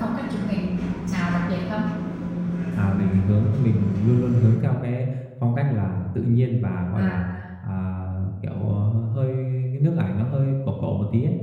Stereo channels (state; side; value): identical; both; correlation 1.00